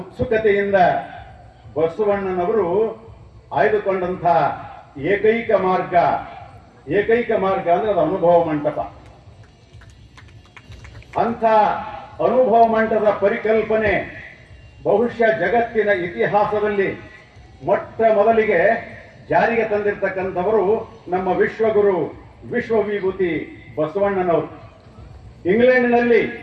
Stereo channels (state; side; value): identical; both; correlation 1.00